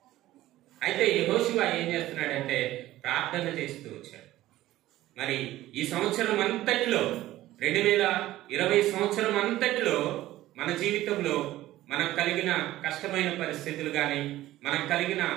అయితే యెహోషువ ఏం చేస్తున్నాడంటే ప్రార్థన చేస్తూ వచ్చాడు. మరి ఈ సంవత్సరం అంతటిలో 2020 సంవత్సరం అంతటిలో మన జీవితంలో మనకు కలిగిన కష్టమైన పరిస్థితులు కానీ, మనకు కలిగిన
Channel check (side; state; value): left; quieter; 15.4 dB